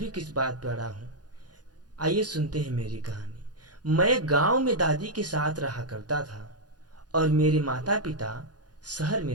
किस बात पर अड़ा हूँ। आइए सुनते हैं मेरी कहानी। मैं गांव में दादी के साथ रहा करता था और मेरे माता पिता शहर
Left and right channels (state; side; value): late; left; 0.69 ms